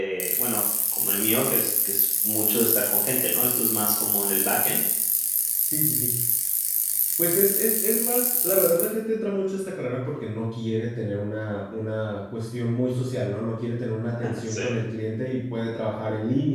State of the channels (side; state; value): both; identical; correlation 1.00